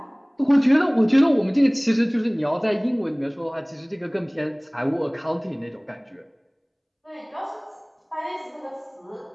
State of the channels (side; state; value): both; identical; correlation 1.00